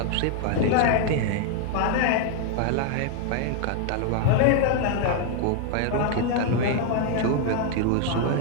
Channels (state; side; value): different; both; correlation 0.00